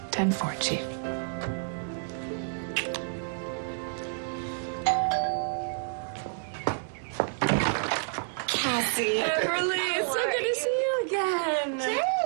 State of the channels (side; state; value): left; silent; 58 dB below the other